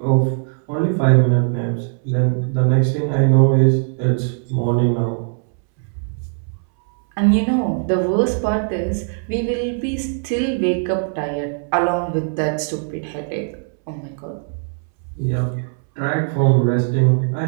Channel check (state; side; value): silent; left; 66 dB below the other